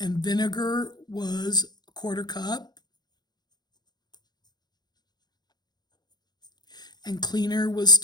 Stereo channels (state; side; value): late; right; 0.20 ms